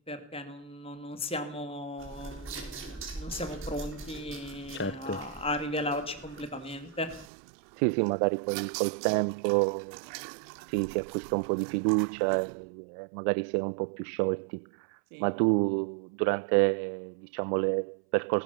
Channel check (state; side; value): drops out; left; at 7.2 s